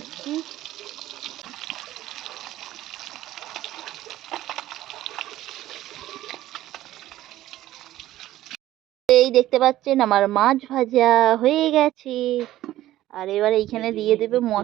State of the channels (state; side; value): quieter; left; 14.6 dB